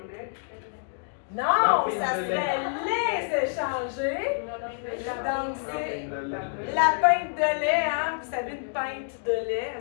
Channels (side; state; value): right; silent; digital silence